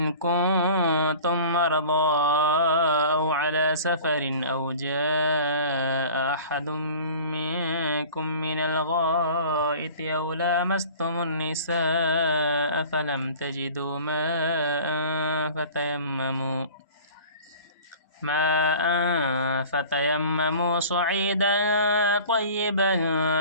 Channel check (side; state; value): both; inverted; correlation -0.43